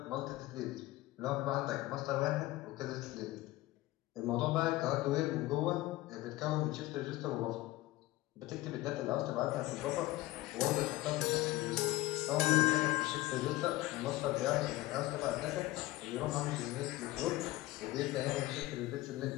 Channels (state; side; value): quieter; right; 18.1 dB